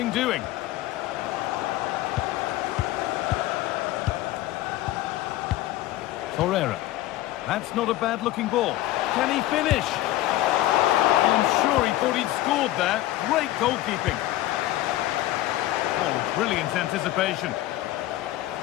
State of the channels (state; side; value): quieter; right; 15.5 dB